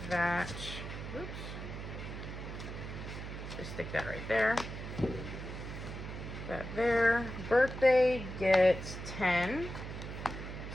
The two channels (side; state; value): right; noise; hum, 8 dB below the sound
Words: that, oops, just stick that right there. That there. Birthday gets 10.